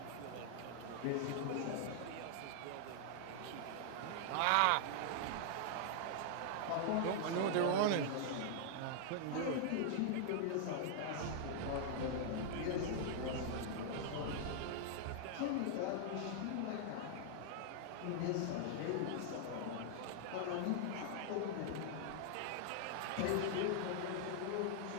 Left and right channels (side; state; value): both; different; correlation -0.01